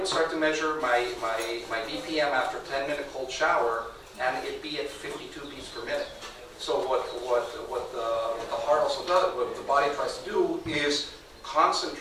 start to measure my BPM after a 10-minute cold shower, and it'd be at 52 beats per minute. So what the heart also does, what the body tries to do, is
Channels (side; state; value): both; identical; correlation 1.00